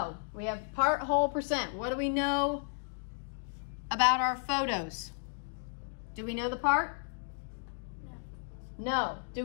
We have part, whole, percent. What do we know about our photos? Do we know the part? No. Do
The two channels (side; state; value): right; silent; digital silence